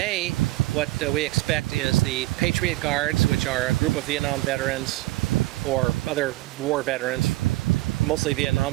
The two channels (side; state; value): left; quieter; 18.8 dB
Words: what we expect is the Patriot Guards, which are a group of Vietnam veterans or other war veterans, mostly Vietnam